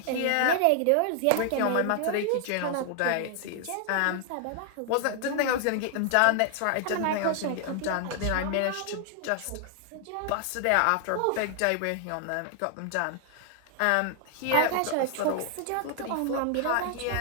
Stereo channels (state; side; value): different; both; correlation 0.00